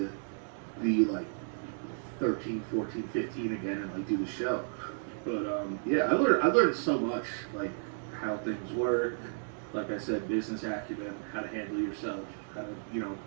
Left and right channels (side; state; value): left; silent; digital silence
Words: be like 13, 14, 15 again and like do the show. But yeah, I learned so much, like how things work. Like I said, business acumen, how to handle yourself, how to